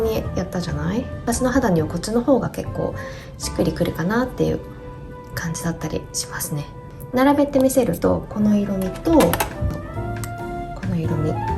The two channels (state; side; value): identical; both; correlation 1.00